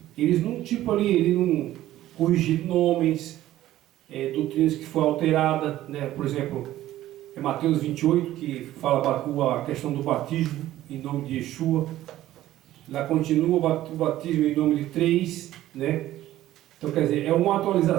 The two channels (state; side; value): quieter; left; 14.2 dB